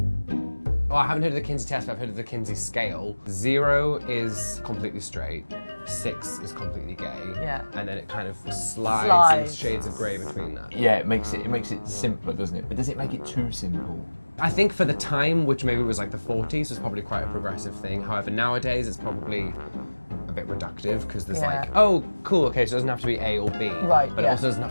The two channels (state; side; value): inverted; both; correlation -1.00